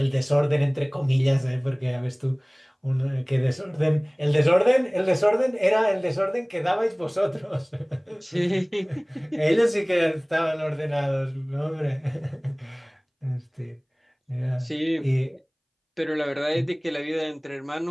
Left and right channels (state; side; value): identical; both; correlation 1.00